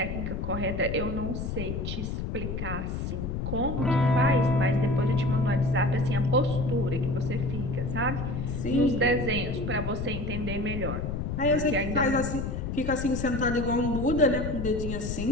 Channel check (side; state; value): left; noise; rumble, 4 dB below the sound